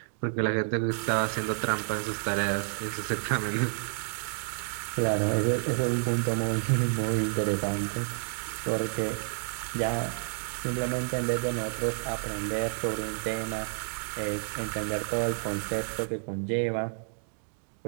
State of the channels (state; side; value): silent; left; 58 dB below the other